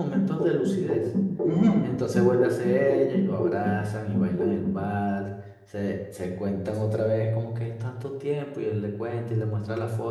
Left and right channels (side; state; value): both; identical; correlation 1.00